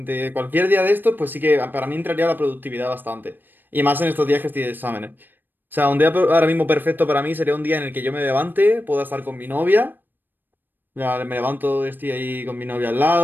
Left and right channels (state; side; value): late; left; 0.092 ms